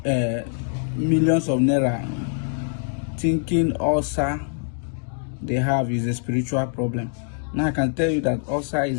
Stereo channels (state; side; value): silent; right; digital silence